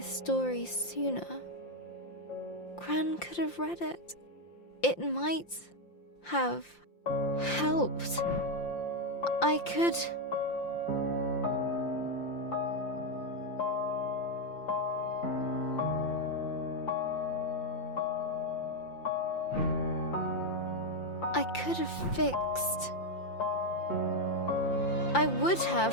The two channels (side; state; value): right; late; 5.7 ms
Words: story sooner, Gran could have read it. It might have helped. I could... I could have fixed. I would